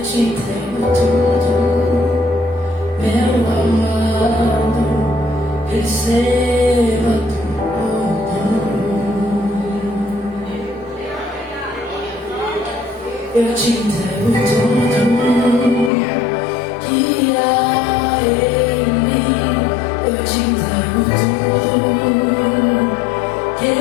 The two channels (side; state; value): right; drops out; at 15.9 s